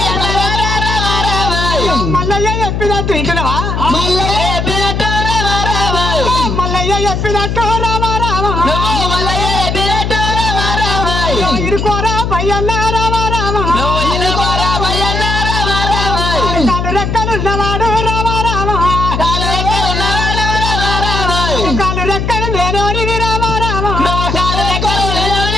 మల్లయ్య చెప్పినట్టు ఇంటున్నావా మల్లయ్య చెప్పినట్టు రామారామ ఇరుకోరా పయ్యన్న రామారామ కాలు రెక్కలున్నవాడు రామారామ కాలు రెక్కలు లేనోడివి రామారామ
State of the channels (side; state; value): left; noise; hum, 1 dB below the sound